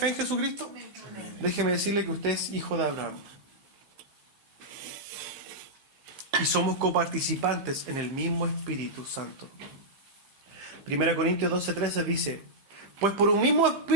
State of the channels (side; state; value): left; late; 15 ms